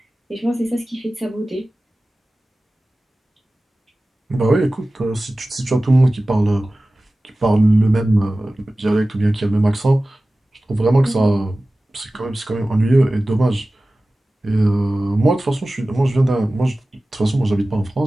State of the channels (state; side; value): normal; both; correlation 0.97